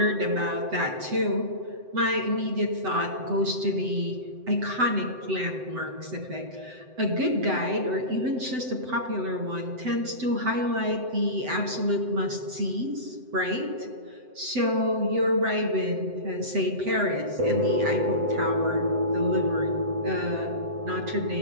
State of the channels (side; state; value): left; late; 7.8 ms